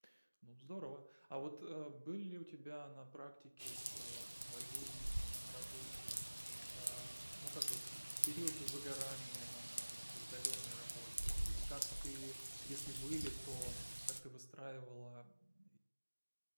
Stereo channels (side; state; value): both; inverted; correlation -1.00